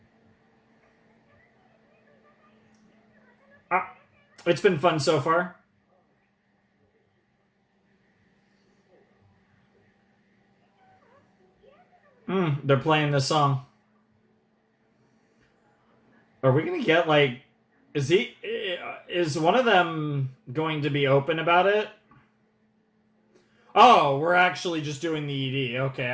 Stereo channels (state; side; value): identical; both; correlation 1.00